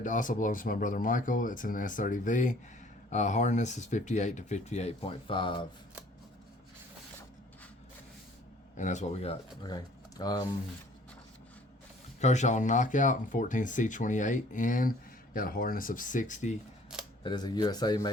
also belongs to my brother Michael. It's an S30V. Hardness is 58 to 58.5. And that's what we got. Okay. Kershaw Knockout and 14C28N. Got a hardness of 60. That is a USA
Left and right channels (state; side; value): normal; both; correlation 0.55